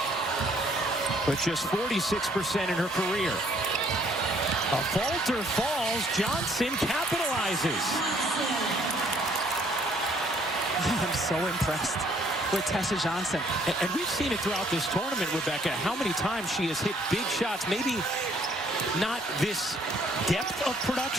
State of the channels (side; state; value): both; normal; correlation 0.63